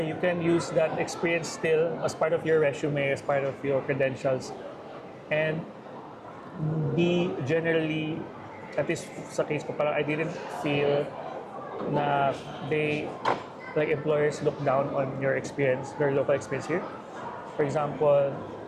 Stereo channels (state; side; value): identical; both; correlation 1.00